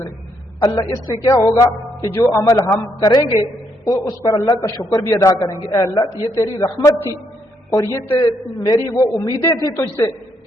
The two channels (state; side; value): normal; both; correlation 0.75